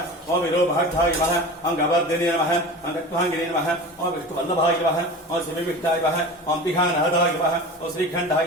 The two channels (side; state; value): both; normal; correlation 0.33